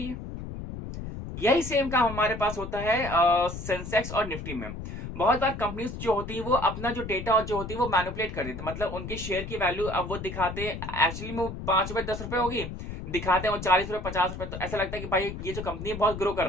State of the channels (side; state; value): left; noise; rumble, 8 dB below the sound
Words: है। यही सेम काम हमारे पास होता है सेंसेक्स और निफ्टी में। बहुत बार कंपनीज जो होती है वो अपना जो डेटा जो होती है वो मैनिपुलेट कर देते हैं, मतलब उनके शेयर की वैल्यू अब वो दिखाते हैं, एक्चुअली में वो 5 रुपए 10 रुपए होगी, दिखाते हैं वो 40 रुपए 50 रुपए। तो ऐसा लगता है कि भाई ये जो कंपनी है बहुत ग्रो कर